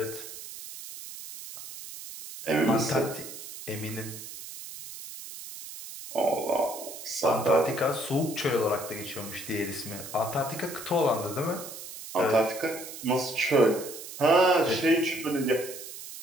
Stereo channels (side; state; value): right; noise; hiss, 12 dB below the sound